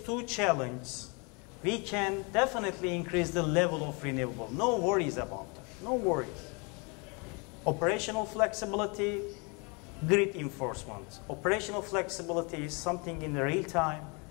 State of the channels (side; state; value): right; quieter; 31.7 dB